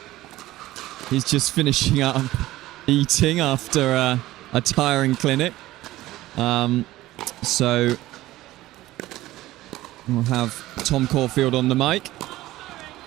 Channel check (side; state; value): left; quieter; 16.5 dB